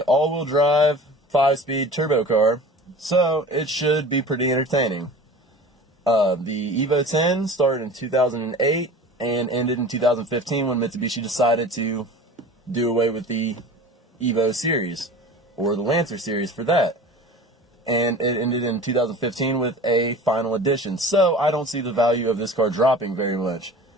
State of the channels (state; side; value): normal; both; correlation 0.39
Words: all-wheel drive, 5-speed turbo car, so it should be pretty entertaining. The Evo 10 started in 2008 and ended in 2015 when Mitsubishi decided to do away with the Evo series, or the Lancer series for that. And it ended in 2015 with a final edition. So I don't see the value of this car dropping very much.